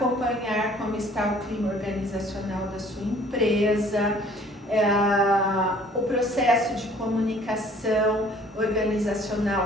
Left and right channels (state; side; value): normal; both; correlation 0.55